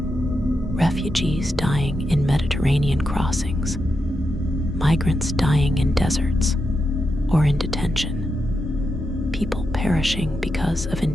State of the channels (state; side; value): normal; both; correlation 0.86